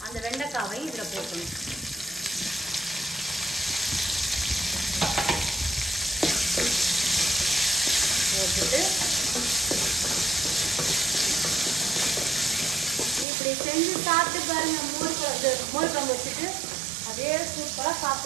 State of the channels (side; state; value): left; drops out; at 13.2 s